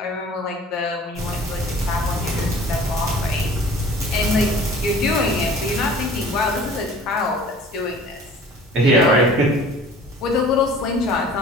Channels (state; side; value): normal; both; correlation 0.47